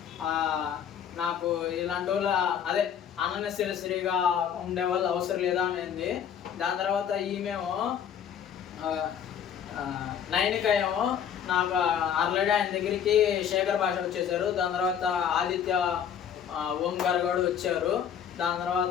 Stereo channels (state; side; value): quieter; right; 8.6 dB